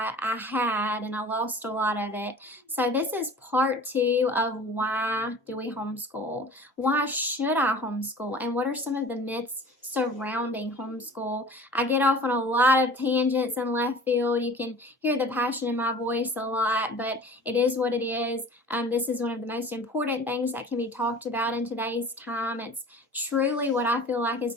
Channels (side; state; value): both; normal; correlation 0.43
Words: had, and I lost a lot of it. So this is part 2 of why do we homeschool? Why should I homeschool? And what are some of the myths surrounding homeschool? I get off on a lot of tangents and left field. You can hear the passion in my voice a lot, but it is what it is. This is one of the most important things that can be talked about in today's time. It's truly what I feel like is